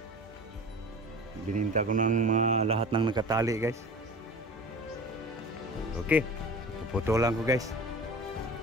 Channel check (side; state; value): both; normal; correlation 0.38